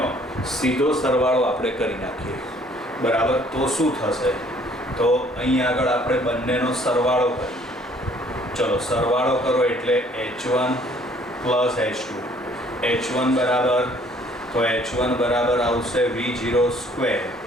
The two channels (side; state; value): both; normal; correlation 0.59